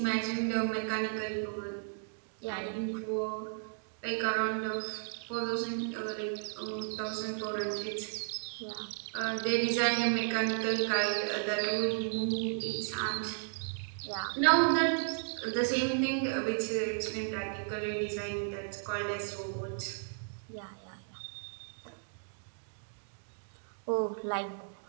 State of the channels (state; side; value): silent; left; digital silence